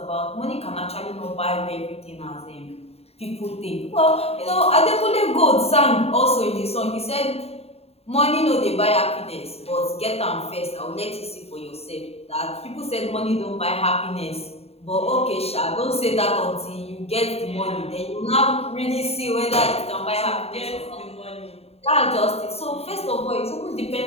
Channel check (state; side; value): late; right; 0.29 ms